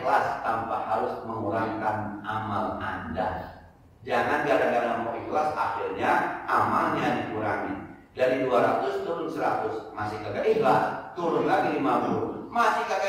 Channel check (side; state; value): both; identical; correlation 1.00